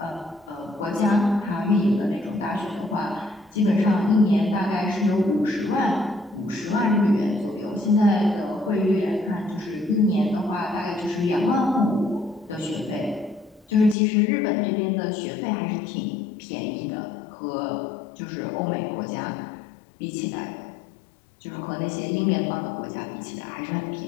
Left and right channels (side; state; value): right; drops out; at 14.0 s